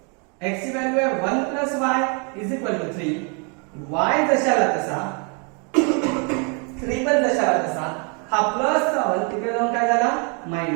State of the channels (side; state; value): left; quieter; 36.0 dB